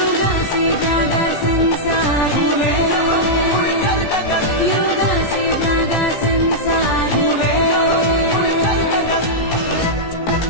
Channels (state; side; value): late; right; 17 ms